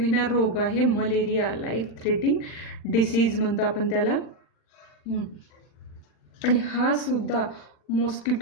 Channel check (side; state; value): right; late; 40 ms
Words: रोग आहे मलेरिया. लाईफ थ्रेटिंग डिसीज म्हणतो आपण त्याला. आणि हा सुद्धा